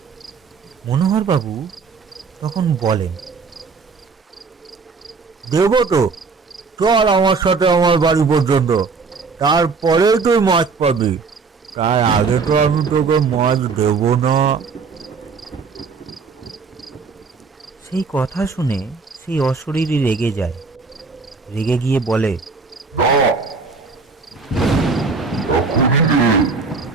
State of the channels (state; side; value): quieter; left; 4.8 dB